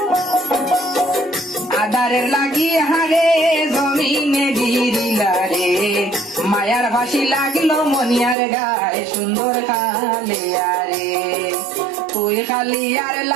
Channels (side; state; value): left; drops out; at 8.3 s